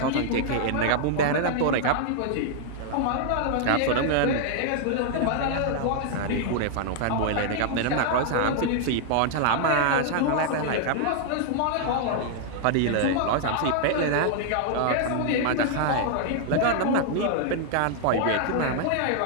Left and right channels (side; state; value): both; different; correlation 0.00